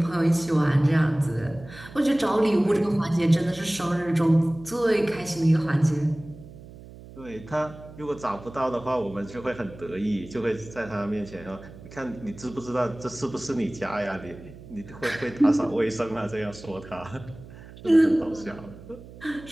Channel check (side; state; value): right; noise; hum, 17 dB below the sound